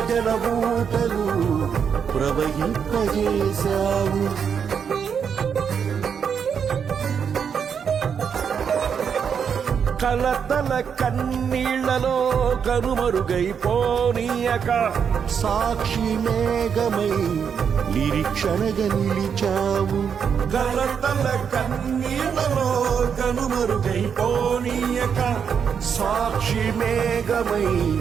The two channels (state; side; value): quieter; left; 7.1 dB